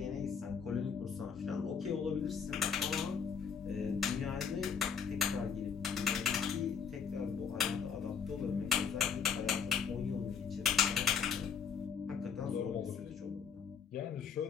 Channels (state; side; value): quieter; right; 6.7 dB